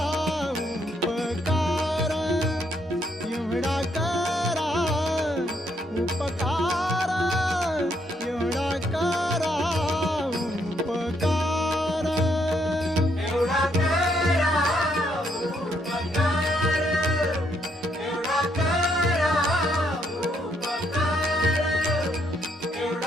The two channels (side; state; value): both; normal; correlation 0.73